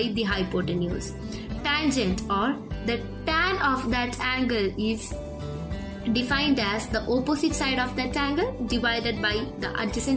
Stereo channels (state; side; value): identical; both; correlation 1.00